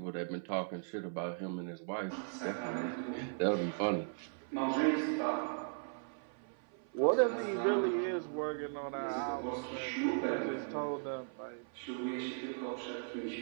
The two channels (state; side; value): silent; left; 53 dB below the other